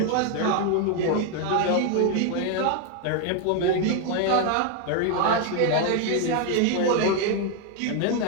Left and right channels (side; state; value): both; different; correlation 0.01